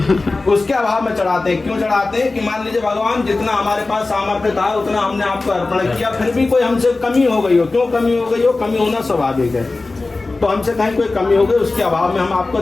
उसके अभाव में चढ़ाते हैं। क्यों चढ़ाते हैं? कि मान लीजिए भगवान जितना हमारे पास सामर्थ्य था उतना हमने आपको अर्पण किया, फिर भी कोई हमसे कमी हो गई हो। क्यों कमी हो गई हो? कमी होना स्वाभाविक है, तो हमसे कहीं कोई कमी हो गई उसके अभाव में हम आपको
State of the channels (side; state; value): right; quieter; 3.4 dB